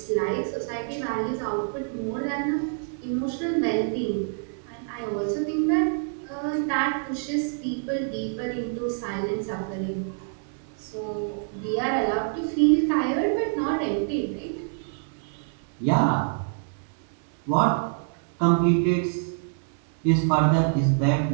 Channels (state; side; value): silent; left; 61 dB below the other